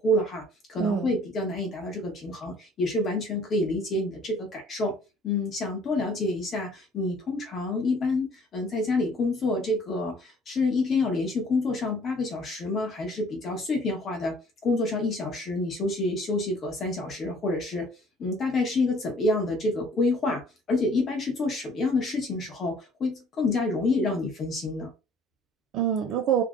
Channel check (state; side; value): normal; both; correlation 0.55